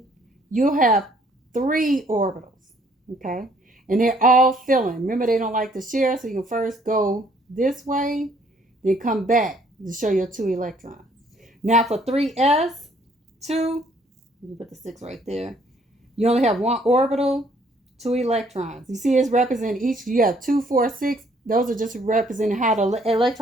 you'll have 3 orbitals, okay? And they're all filling. Remember, they don't like to share, so you can first go this way, then come back to show your 2 electrons. Now for 3s2, you put the 6 right there. You only have 1 orbital, 2 electrons. You see it's representing each. You have 2, 4, 6. Those are just representing how the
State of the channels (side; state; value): both; normal; correlation 0.63